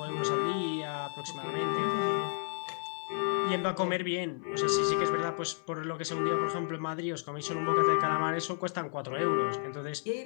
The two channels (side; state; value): right; silent; 56 dB below the other